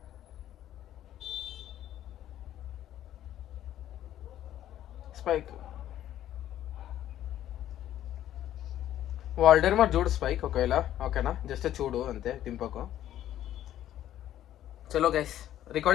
స్పైక్ వాల్డర్ మరి చూడు స్పైక్ ఒకవేళ ఓకేనా, జస్ట్ చూడు అంతే, దింపకు. చలో గైస్,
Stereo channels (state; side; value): quieter; right; 12.1 dB